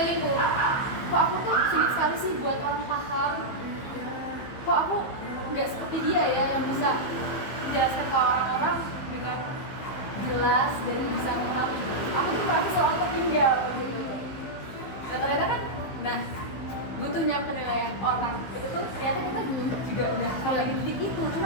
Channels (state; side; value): late; right; 15 ms